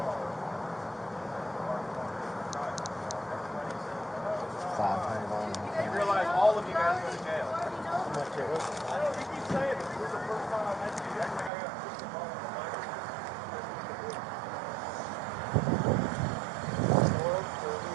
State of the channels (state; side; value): drops out; left; at 11.5 s